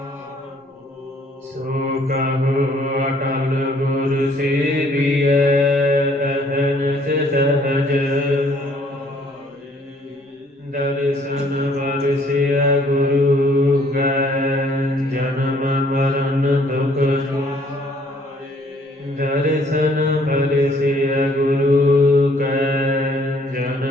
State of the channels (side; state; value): both; normal; correlation 0.61